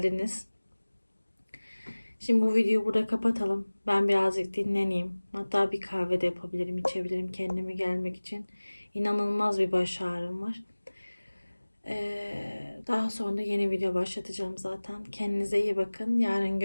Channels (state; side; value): inverted; both; correlation -1.00